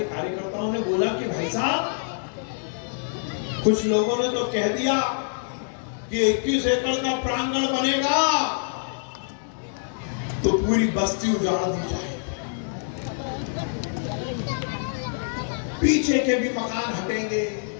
कार्यकर्ताओं ने बोला कि भाई साहब, कुछ लोगों ने तो कह दिया कि 21 एकड़ का प्रांगण बनेगा तो पूरी बस्ती उजाड़ दी जाए, पीछे के भी मकान हटेंगे,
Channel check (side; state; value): right; silent; digital silence